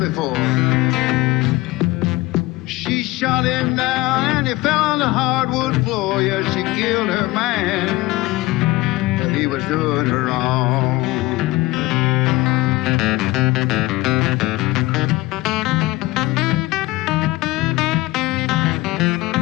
She shot him down and he fell on the hardwood floor. Yeah, she killed her man, but he was doing her wrong.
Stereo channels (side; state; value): right; quieter; 19.9 dB